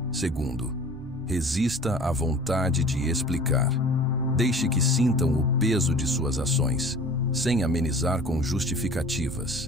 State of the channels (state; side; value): normal; both; correlation 0.44